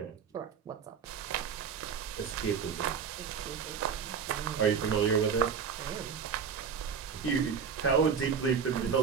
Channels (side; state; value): left; quieter; 6.7 dB